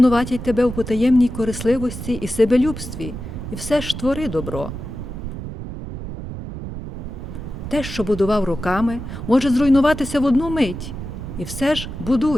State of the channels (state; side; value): noise; right; rumble, 8 dB below the sound